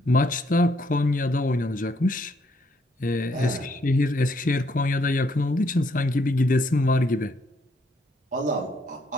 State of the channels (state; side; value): normal; both; correlation 0.71